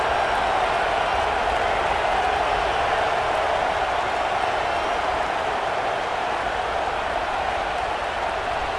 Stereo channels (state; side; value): identical; both; correlation 1.00